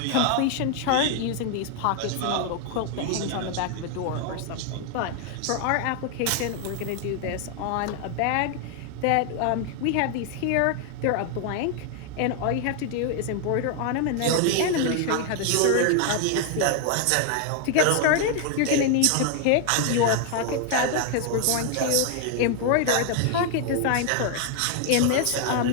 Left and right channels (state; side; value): different; both; correlation 0.00